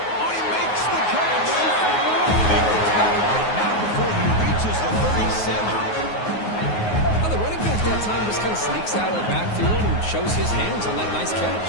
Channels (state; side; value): late; right; 9.5 ms